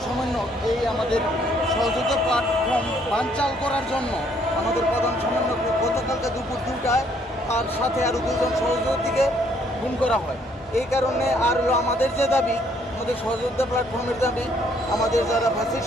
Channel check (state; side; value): normal; both; correlation 0.66